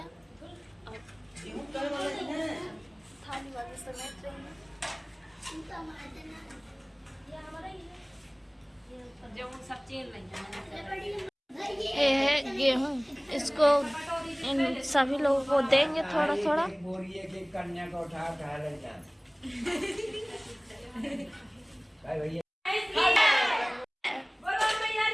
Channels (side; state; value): both; identical; correlation 1.00